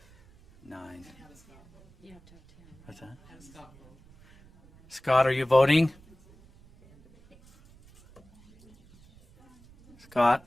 9. What's that? Scott, are you voting? Scott?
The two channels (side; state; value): right; noise; rumble, 26 dB below the sound